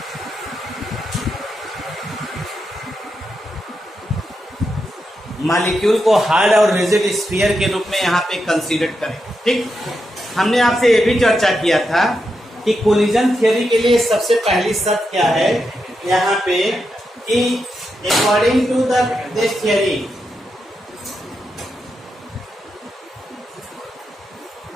Molecule को हार्ड और रिजिड स्फीयर के रूप में यहाँ पे कंसीडर करें। ठीक, हमने आपसे ये भी चर्चा किया था कि कोलिजन थियरी के लिए सबसे पहली शर्त क्या है यहाँ पे कि according to this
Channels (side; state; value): both; normal; correlation 0.85